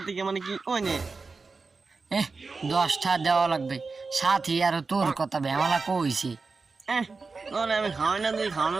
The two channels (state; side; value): quieter; left; 4.2 dB